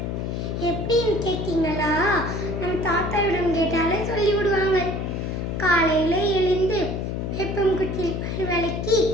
எப்படின்னு கேட்டீங்களா? நம் தாத்தாவிடம் கேட்டாலே சொல்லிவிடுவாங்க. காலையில் எழுந்து வேப்பங்குச்சியில் பல் விளக்கி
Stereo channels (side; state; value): left; noise; hum, 3 dB below the sound